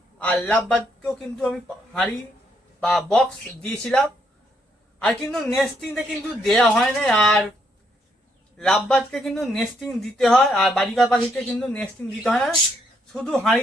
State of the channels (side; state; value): both; normal; correlation 0.74